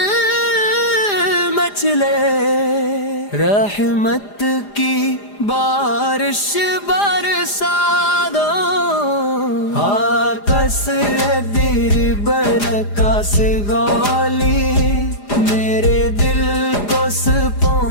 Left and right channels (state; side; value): late; right; 4.9 ms